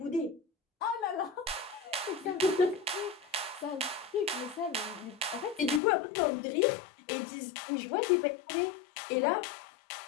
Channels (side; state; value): right; drops out; at 5.8 s